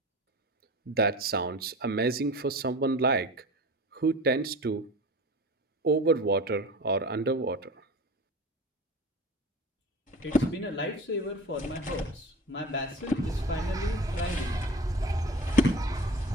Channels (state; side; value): normal; both; correlation 0.36